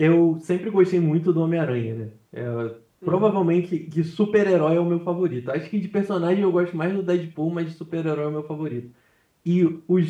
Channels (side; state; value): both; identical; correlation 1.00